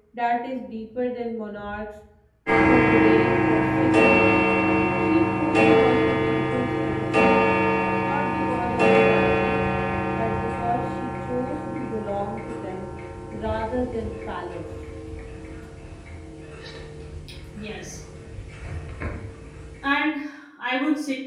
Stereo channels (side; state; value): both; identical; correlation 1.00